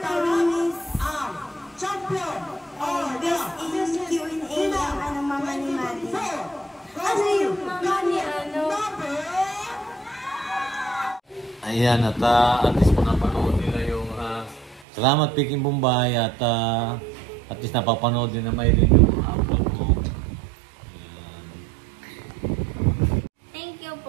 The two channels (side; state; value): left; drops out; at 14.9 s